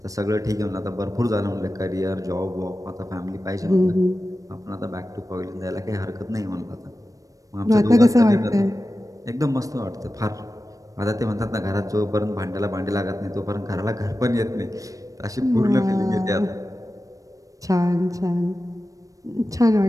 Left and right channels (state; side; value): late; left; 0.16 ms